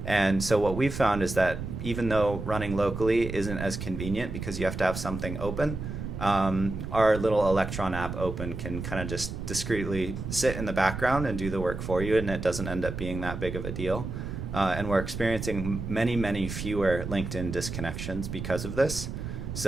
And so what we've found is that even though running locally isn't as convenient because you have to have something open, our little Electron app open can kind of just discreetly sit in the background and do the work for you, and it doesn't end up being that big of a deal. And we're experiencing many fewer LinkedIn disconnections because of this.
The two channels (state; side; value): noise; right; rumble, 6 dB below the sound